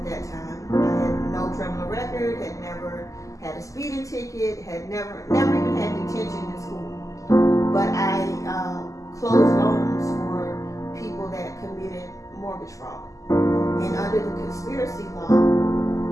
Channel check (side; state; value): right; late; 0.16 ms